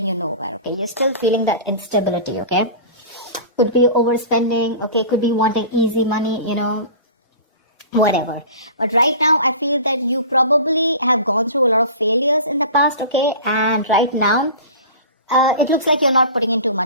you nowhere, okay? You're still feeling that instability, okay? Could be overspending, okay, could be wanting easy money, whatever. But right now I feel that you probably have gone through a lot of failures in the past, okay, and right now it looks like you're not putting in too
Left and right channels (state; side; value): inverted; both; correlation -0.37